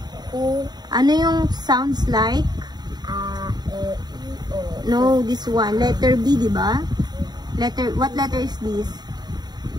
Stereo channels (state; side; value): late; left; 0.20 ms